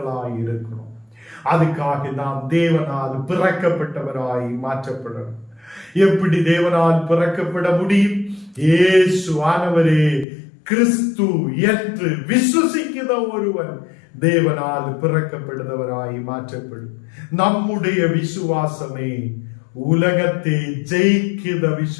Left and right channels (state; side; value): drops out; right; at 10.2 s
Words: இருக்கணும். அதுக்காக நாம் தேவனால் பிறக்கப்பட்டவராய் மாற்றப்படணும். எப்படி தேவனால் பிறக்கப்பட முடியும்? இயேசு ஆனவரே கிறிஸ்து என்று விசுவசிக்கிற ஒருவன் தேவனால் பிறக்கப்படுகிறவராய் மாற்றப்படும். நம்முடைய விசுவாசமே உலகத்தை ஜெயிக்கிற